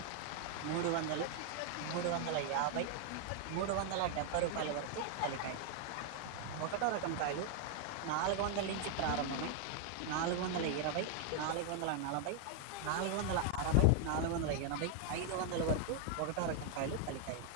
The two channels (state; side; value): different; both; correlation 0.00